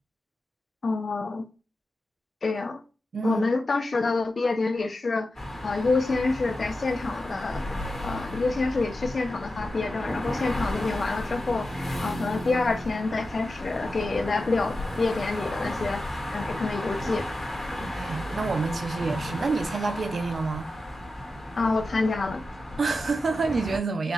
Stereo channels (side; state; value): both; normal; correlation 0.91